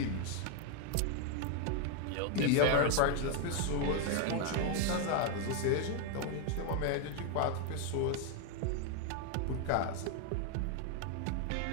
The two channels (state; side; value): different; both; correlation 0.01